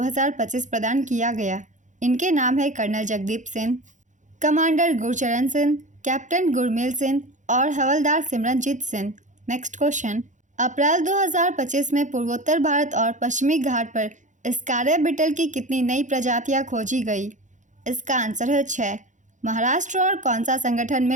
प्रदान किया गया। इनके नाम है colonel Jagdeep Singh, commander Gurcharan Singh, captain Gurmel Singh और हवलदार सिमरनजीत सिंह। Next question. अप्रैल 2025 में पूर्वोत्तर भारत और पश्चिमी घाट पर स्कारिया बीटल की कितनी नई प्रजातियां खोजी गई? इसका आंसर है 6। महाराष्ट्र और कौन सा संगठन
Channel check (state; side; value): late; left; 0.36 ms